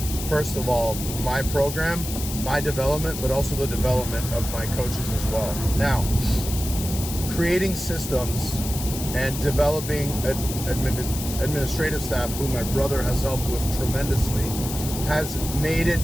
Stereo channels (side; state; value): left; noise; hiss, 8 dB below the sound